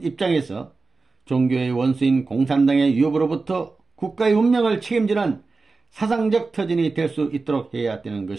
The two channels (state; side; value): quieter; left; 4.0 dB